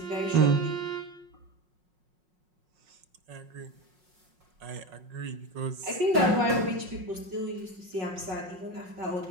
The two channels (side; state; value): left; late; 5.5 ms